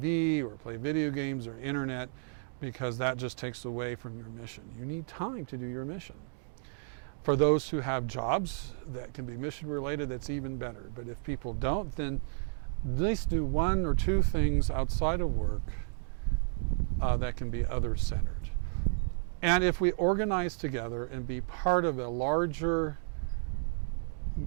or play video games or internet, because that just takes away from your mission. You need time to do your mission. For those who have jobs that can be mission related, that's even better. But if people don't, then at least do one or two things outside of work that can be other-centered. And if we organize together and be part of a larger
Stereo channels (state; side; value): silent; left; digital silence